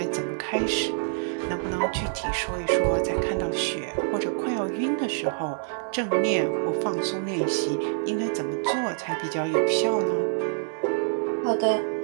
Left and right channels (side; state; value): left; silent; digital silence